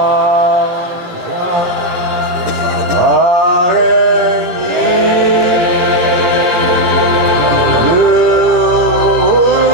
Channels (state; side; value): late; left; 17 ms